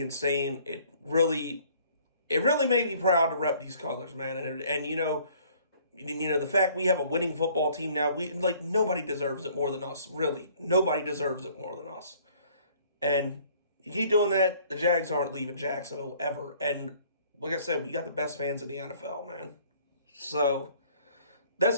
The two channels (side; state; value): both; inverted; correlation -0.58